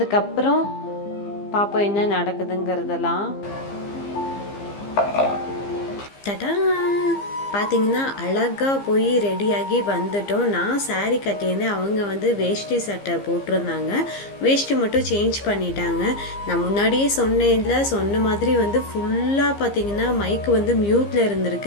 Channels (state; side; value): late; right; 15 ms